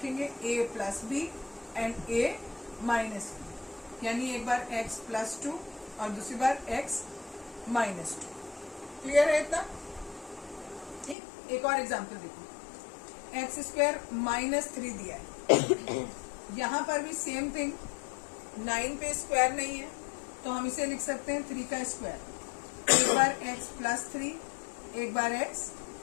a plus B and a minus B, यानी एक बार x प्लस 2 और दूसरी बार x माइनस 2। क्लियर है इतना? ठीक। एक और एग्जांपल देखो, एक्स स्क्वायर माइनस 3 दिया है, यहाँ पर भी सेम थिंग, 9 पे स्क्वायर नहीं है तो हम इसे लिख सकते हैं 3 का स्क्वायर, एक बार x प्लस 3, एक बार x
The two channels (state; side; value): drops out; right; at 11.2 s